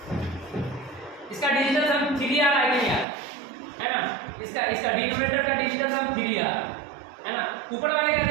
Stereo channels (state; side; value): drops out; left; at 3.1 s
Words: इसका डिजिटल सम 3 आ रहा है कि नहीं आ रहा, है ना। इसका डिनोमिनेटर का डिजिटल सम 3 आ रहा है ना। ऊपर वाले का